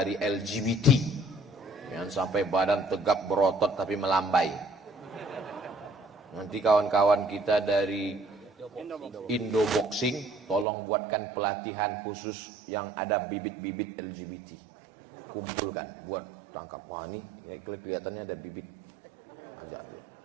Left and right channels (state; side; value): drops out; left; at 10.7 s